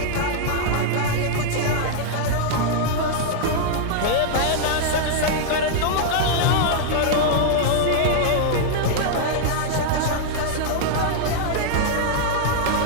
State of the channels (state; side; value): different; both; correlation -0.01